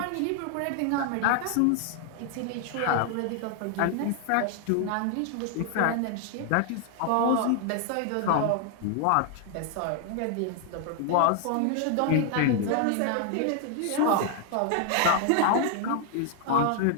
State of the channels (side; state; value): both; different; correlation 0.00